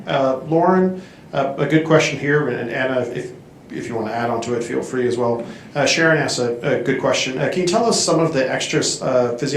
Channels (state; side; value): identical; both; correlation 1.00